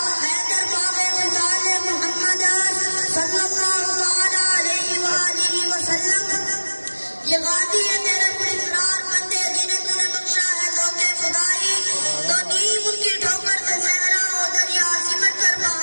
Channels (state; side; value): inverted; both; correlation -1.00